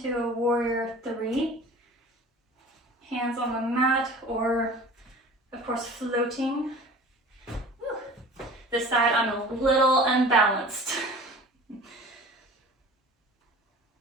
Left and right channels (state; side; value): normal; both; correlation 0.42